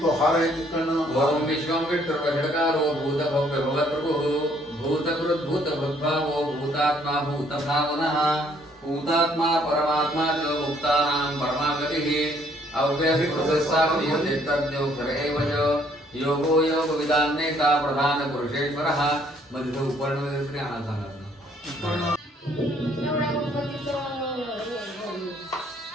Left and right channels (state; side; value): normal; both; correlation 0.64